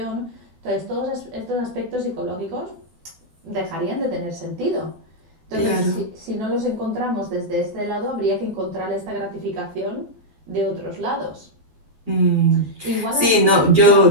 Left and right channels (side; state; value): left; late; 12 ms